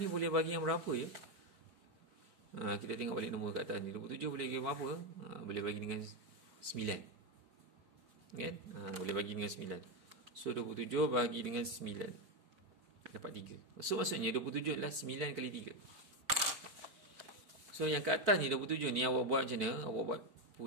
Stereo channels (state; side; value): late; left; 4.5 ms